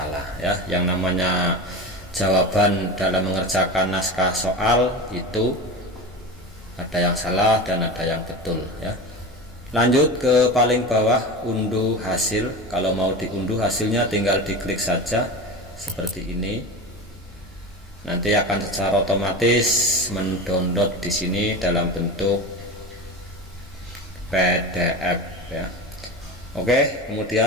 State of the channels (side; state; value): both; normal; correlation 0.28